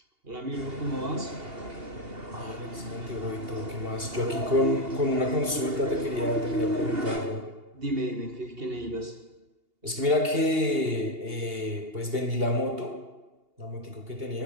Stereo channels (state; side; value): late; left; 2.8 ms